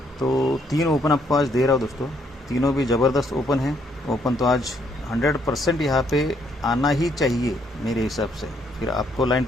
तो 3 ओपन आपको आज दे रहा हूँ दोस्तों, तीनों भी ज़बरदस्त ओपन है। ओपन तो आज 100% यहाँ पे आना ही चाहिए मेरे हिसाब से। फिर आपको लाइन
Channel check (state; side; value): normal; both; correlation 0.70